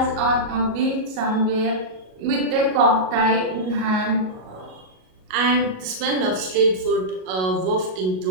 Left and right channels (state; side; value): late; left; 38 ms